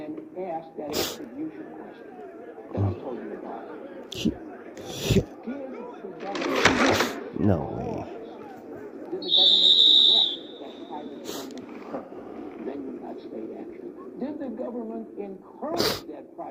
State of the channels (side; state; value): both; identical; correlation 1.00